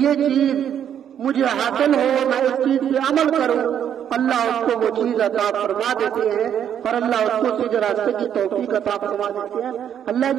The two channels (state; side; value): quieter; left; 9.3 dB